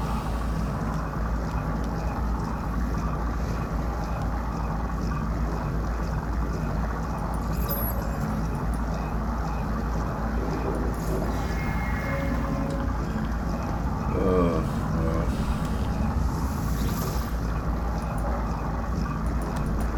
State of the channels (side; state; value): both; identical; correlation 1.00